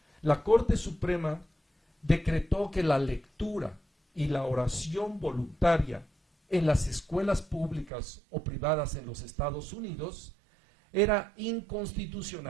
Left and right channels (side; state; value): left; drops out; at 7.9 s